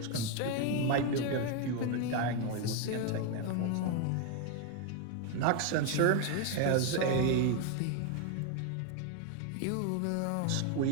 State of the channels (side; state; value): both; different; correlation 0.01